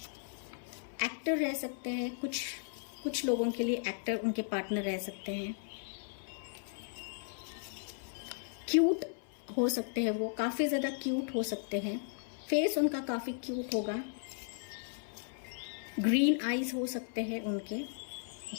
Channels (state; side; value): silent; right; 54 dB below the other